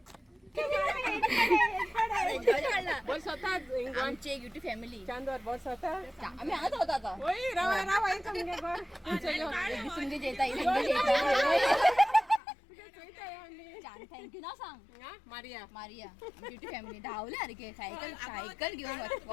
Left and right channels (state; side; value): drops out; right; at 12.4 s